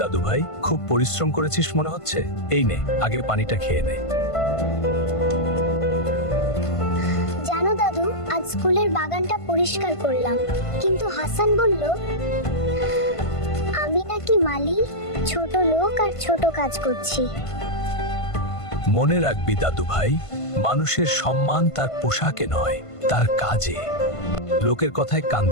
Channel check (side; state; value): right; late; 1.5 ms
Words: দাদু ভাই, খুব পরিশ্রম করেছিস মনে হচ্ছে। এই নে, আগে পানিটা খেয়ে নে। জানো দাদু, আজ স্কুলের বাগানটা পরিষ্কার করলাম, কিন্তু হাসান বলল আমি নাকি মালি, ছোট লোক আর ছোট কাজ করছি। মনে রাখবি দাদু ভাই, মানুষের সম্মান তার পোশাকে নয়, তার কাজে। লোকের কথায় কান